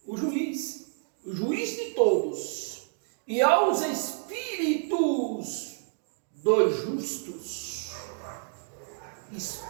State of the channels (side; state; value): left; silent; digital silence